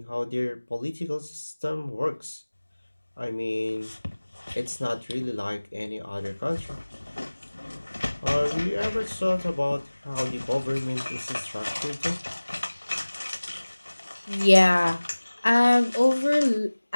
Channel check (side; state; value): both; inverted; correlation -1.00